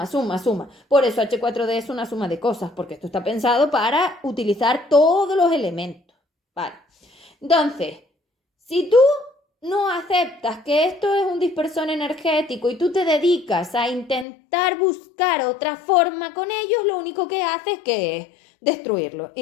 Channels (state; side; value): drops out; right; at 14.2 s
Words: Por eso H4D es una suma de cosas, porque esto está pensado para utilizar todos los elementos, ¿vale? Entonces, si tú no aceptas que esto es un dispersor energético y tú te dedicas a intentar buscar otra forma con ellos, lo único que haces es destruirlo,